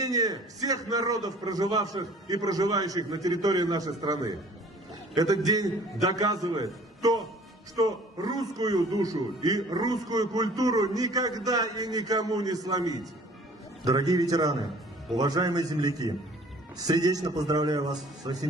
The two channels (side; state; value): both; normal; correlation 0.51